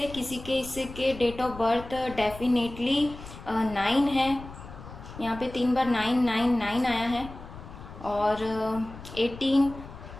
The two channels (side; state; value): left; noise; rumble, 14 dB below the sound